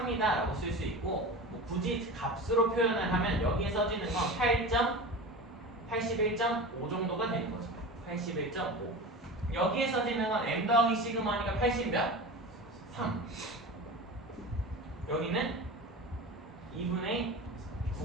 라고 쓸 수 있고, 뭐 굳이 값으로 표현을 하면 여기에 써지는 건 81.5 정도가 되는 거죠. 81.5. 여기에 써지는 건 m 더하기 시그마니까 80 몇? 3. 여기는 2분의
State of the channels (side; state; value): both; normal; correlation 0.31